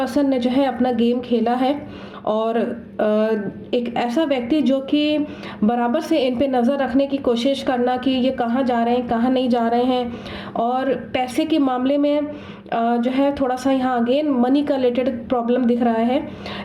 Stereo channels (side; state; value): both; identical; correlation 1.00